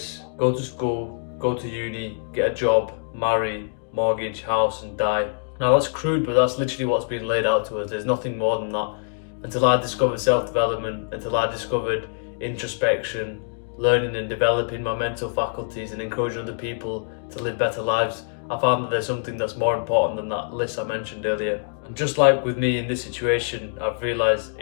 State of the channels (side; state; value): right; silent; digital silence